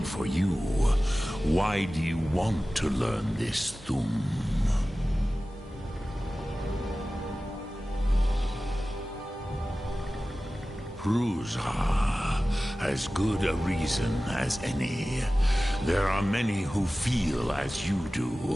for you. Why do you want to learn this Thum? Pruzha. As good a reason as any. There are many who feel as you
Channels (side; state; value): both; normal; correlation 0.96